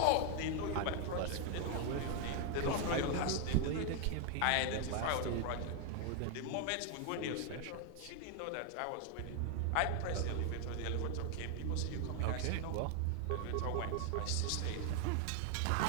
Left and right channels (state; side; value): different; both; correlation 0.00